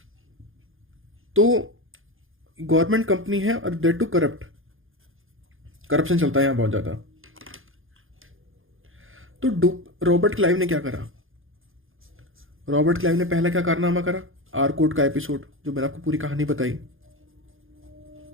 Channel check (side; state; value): left; late; 0.59 ms